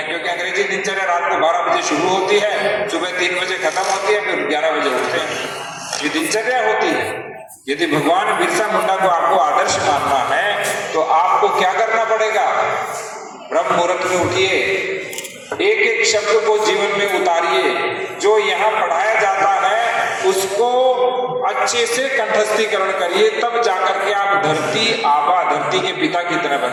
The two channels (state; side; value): identical; both; correlation 1.00